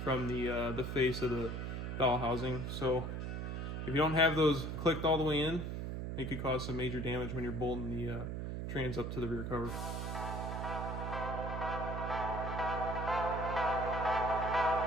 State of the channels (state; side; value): noise; right; hum, 4 dB below the sound